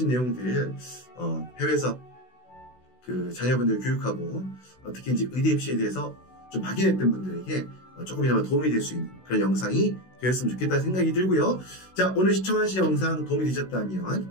내용들 해외에서 그 자녀분들 교육하고 특히 이제 의대 입시에 대해서 좀 막연했던 분들에게 조금이나마 도움이 될 수 있는 그런 영상이 되었으면 좋겠다는 생각이 들고요. 자, 오늘 시청하신 영상 도움이 되셨다면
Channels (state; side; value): late; right; 16 ms